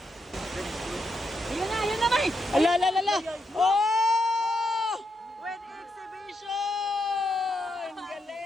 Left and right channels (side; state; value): both; normal; correlation 0.81